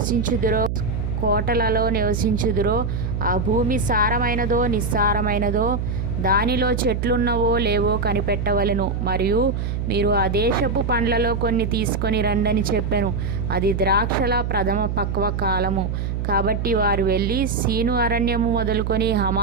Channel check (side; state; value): right; noise; hum, 2 dB below the sound